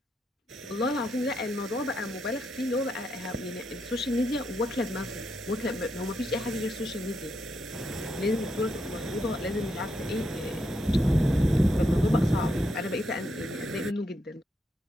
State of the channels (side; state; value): both; normal; correlation 0.81